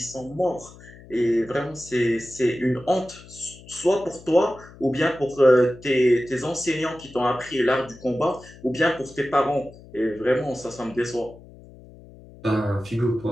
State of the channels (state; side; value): noise; left; hum, 20 dB below the sound